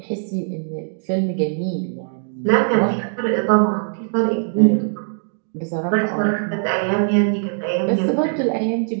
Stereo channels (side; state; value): left; silent; digital silence